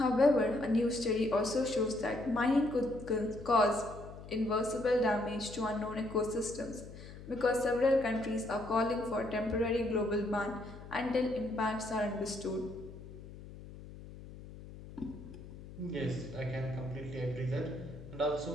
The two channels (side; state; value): left; noise; hum, 15 dB below the sound